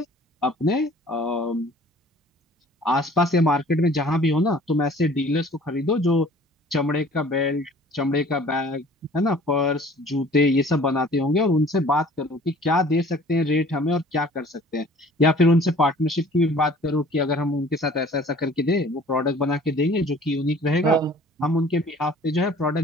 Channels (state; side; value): normal; both; correlation 0.50